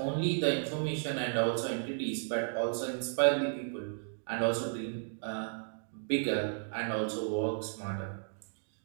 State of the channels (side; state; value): left; silent; digital silence